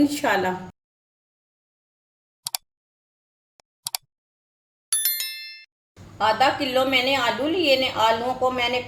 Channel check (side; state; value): both; identical; correlation 1.00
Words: आधा किलो मैंने आलू लिए ने। आलूओं को मैंने